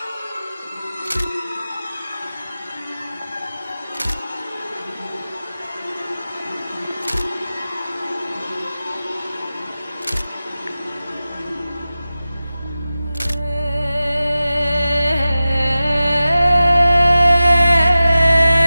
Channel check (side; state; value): both; inverted; correlation -0.95